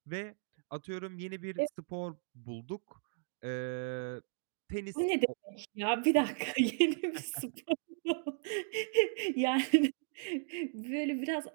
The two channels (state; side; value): silent; left; digital silence